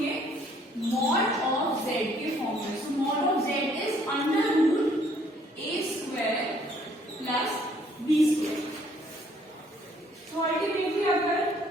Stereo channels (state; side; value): normal; both; correlation 0.63